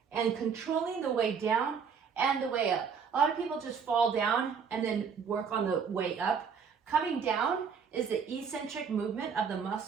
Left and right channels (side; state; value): left; quieter; 6.4 dB